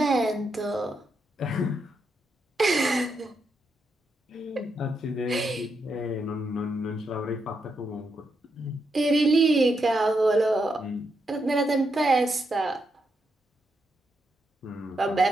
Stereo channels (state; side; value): normal; both; correlation 0.82